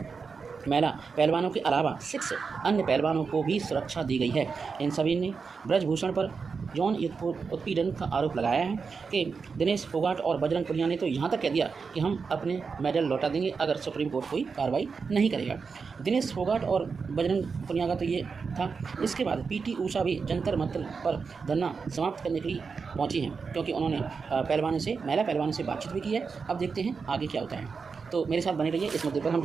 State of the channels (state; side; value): quieter; left; 5.2 dB